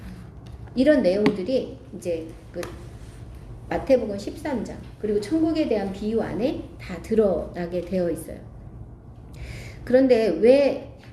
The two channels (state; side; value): identical; both; correlation 1.00